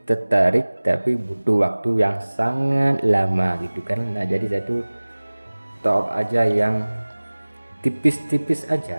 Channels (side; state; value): both; inverted; correlation -1.00